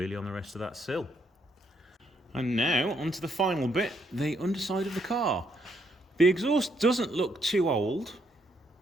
on the rest of that sill. And now onto the final bit, the underside of the car. The exhaust doesn't look too old,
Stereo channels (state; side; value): normal; both; correlation 0.73